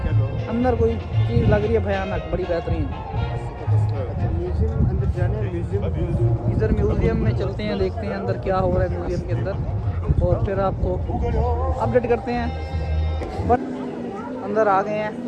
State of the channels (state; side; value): identical; both; correlation 1.00